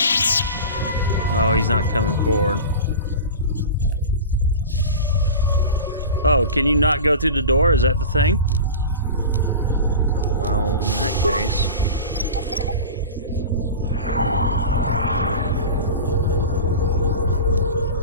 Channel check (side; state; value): both; inverted; correlation -0.32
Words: Oh, he's not coming forward. Oh, can you not go through the door? Is that the thing? Oh, well, in that case.